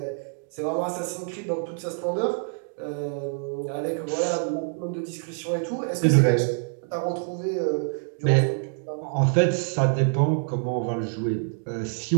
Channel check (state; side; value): silent; left; digital silence